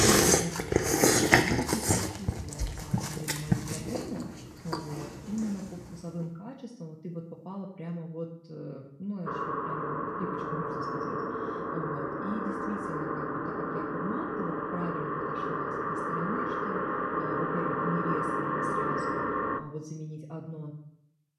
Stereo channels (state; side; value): identical; both; correlation 1.00